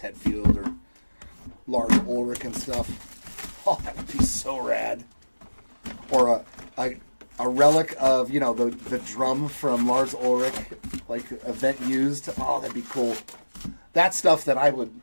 or Lars Ulrich and stuff. Oh, that would be so rad. Or a relic of, you know, the drum from Lars Ulrich, like event used. Oh, that'd be cool. That's stuff that I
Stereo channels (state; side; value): inverted; both; correlation -1.00